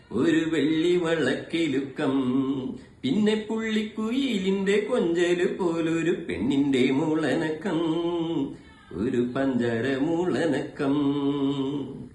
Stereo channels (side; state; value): both; identical; correlation 1.00